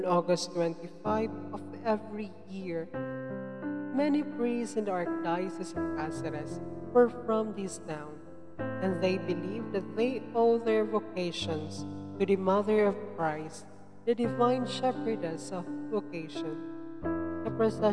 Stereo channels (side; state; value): both; identical; correlation 1.00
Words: August 25 of every year. Many priests in the Archdiocese of Cáceres were from this town, and they believe that they owe their vocations to the Mother of Christ, the Divine Shepherdess of Vocation. The